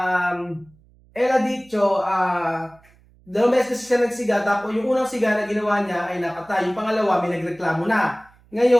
él ha dicho, Dalawang beses kasi siya nagsiga, tapos yung unang siga na ginawa niya ay nakatay. Yung pangalawa, may nagreklamo na.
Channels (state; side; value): noise; right; hum, 30 dB below the sound